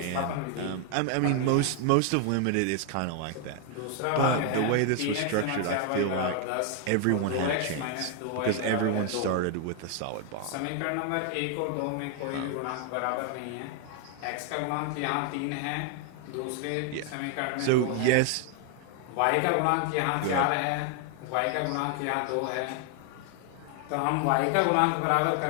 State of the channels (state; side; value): different; both; correlation 0.00